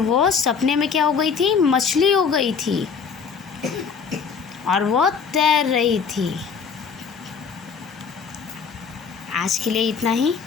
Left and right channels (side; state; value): right; quieter; 6.1 dB